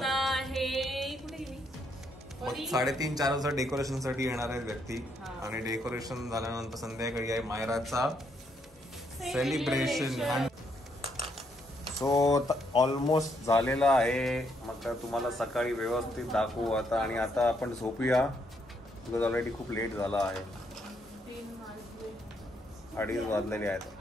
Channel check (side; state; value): both; normal; correlation 0.74